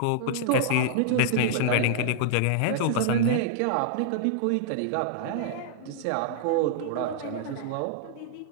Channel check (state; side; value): different; both; correlation -0.01